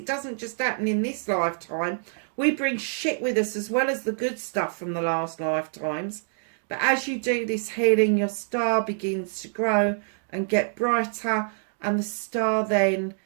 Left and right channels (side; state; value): left; silent; digital silence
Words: doesn't just happen in this lifetime. We bring shit with us as well as the good stuff from the last lifetimes. But as you do this healing, your star begins to grow and get brighter, and the star then